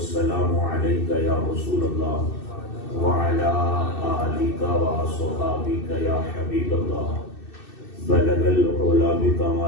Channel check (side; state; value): right; late; 2.6 ms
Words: عليك يا رسول الله وعلى آلك وصحابك يا حبيب الله بلغ العلا